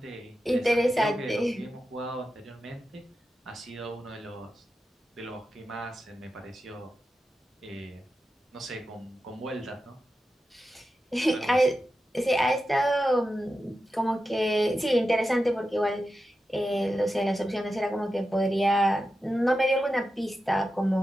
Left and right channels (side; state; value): both; normal; correlation 0.91